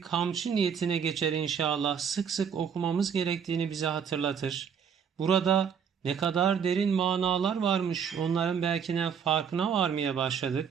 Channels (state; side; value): quieter; left; 7.3 dB